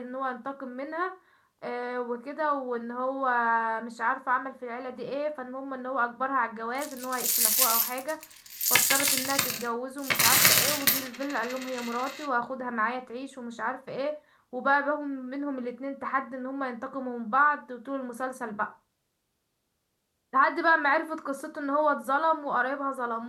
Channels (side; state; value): both; identical; correlation 1.00